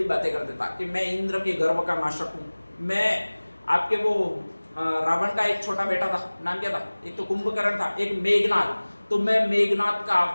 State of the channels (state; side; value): inverted; both; correlation -1.00